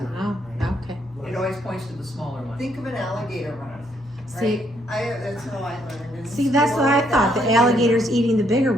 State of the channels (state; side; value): normal; both; correlation 0.72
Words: remember, oh, right? okay. It always points to the smaller one. Think of an alligator run, See, right? That's how I learned. see, that's what I thought, the alligator's eating the bigger